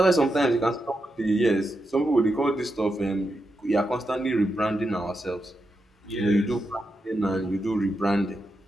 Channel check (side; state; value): both; normal; correlation 0.86